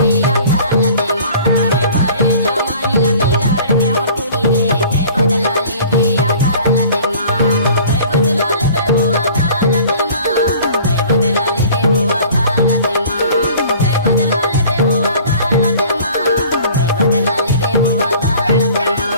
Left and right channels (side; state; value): both; inverted; correlation -0.48